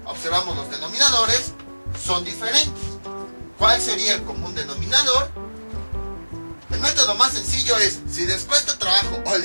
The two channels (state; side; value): inverted; both; correlation -1.00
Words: observamos los denominadores, son diferentes. ¿Cuál sería el común denominador? El método más sencillo es, si les cuesta trabajo o